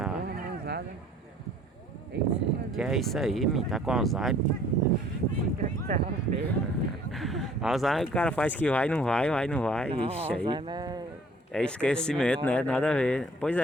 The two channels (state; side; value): normal; both; correlation 0.55